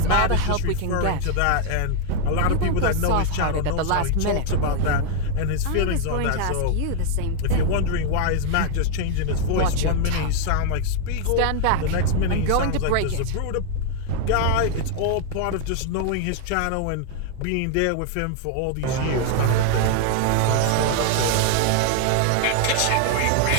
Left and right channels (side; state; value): both; different; correlation 0.00